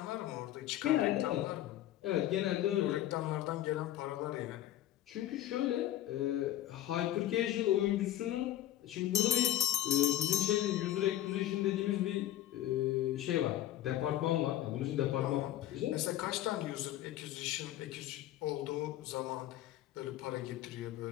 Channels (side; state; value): right; quieter; 13.3 dB